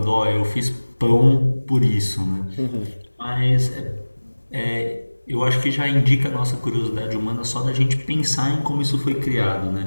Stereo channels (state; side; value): inverted; both; correlation -1.00